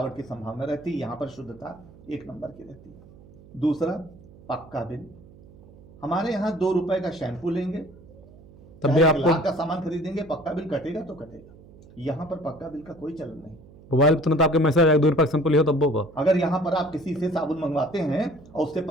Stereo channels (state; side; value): noise; right; hum, 22 dB below the sound